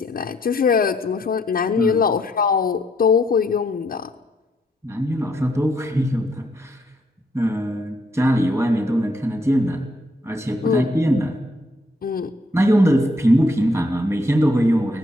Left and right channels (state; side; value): normal; both; correlation 0.72